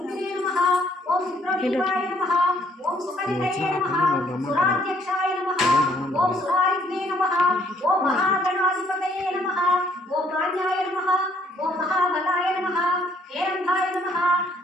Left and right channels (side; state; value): both; normal; correlation 0.65